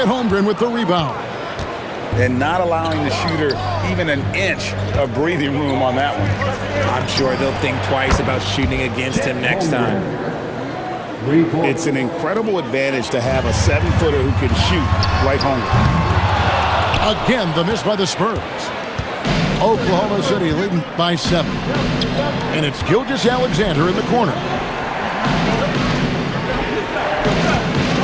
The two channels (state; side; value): identical; both; correlation 1.00